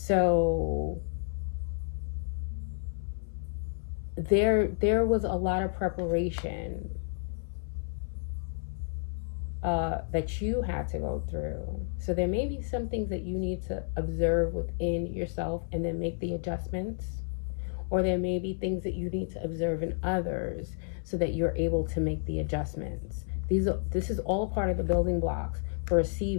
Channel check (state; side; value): silent; right; 57 dB below the other